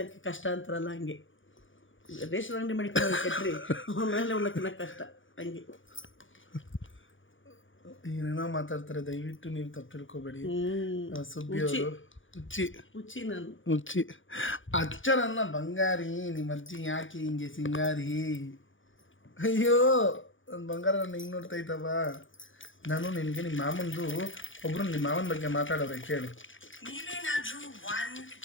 ಕಷ್ಟ ಅಂತಾರಲ್ಲ, ಹಂಗೆ ರೇಷನ್ ಅಂಗಡಿ ಮಾಡಿಕೊಂಡು ಶೆಟ್ರಿ ಆಮೇಲೆ ಉಣ್ಣಕ್ಕೆ ತಿನ್ನೋಕ್ಕೆ ಕಷ್ಟ, ಹಂಗೆ ಏನೇನೋ ಮಾತಾಡ್ತಾರೆ. ದಯವಿಟ್ಟು ನೀವು ತಪ್ಪು ತಿಳ್ಕೊಬೇಡಿ. ಸುಬ್ಬಿ ಅವರು ಹುಚ್ಚಿ ನಾನು ಹುಚ್ಚಿ. ಅಚ್ಚ ನನ್ನ ಬಂಗಾರಿ, ನಿಮ್ಮ ಅಜ್ಜಿ ಯಾಕೆ ಹಿಂಗೆ ಸಿಂಗಾರಿ? ಅಯ್ಯೋ ನನ್ನ ಬಂಗಾರ ನನ್ನ ಹಿಂಗೆ ನೋಡ್ತಾ ಇದ್ದವ. ನಾನು ನಿನಗೆ ನಿಮ್ಮ ಮಾಮಂದು ಒಬ್ಬರು ನಿಮ್ಮ ಮಾಮನ ಬಗ್ಗೆ ಮಾತಾಡೋರೆ, ಕೇಳು. ನೀವೇನಾದ್ರೂ 1,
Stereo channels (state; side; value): late; right; 0.57 ms